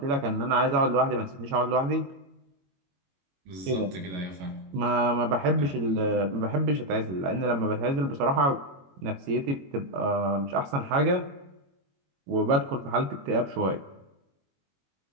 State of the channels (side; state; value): left; late; 22 ms